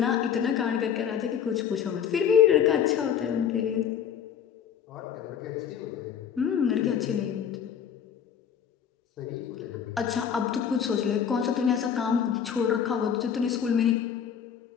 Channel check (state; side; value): quieter; right; 8.2 dB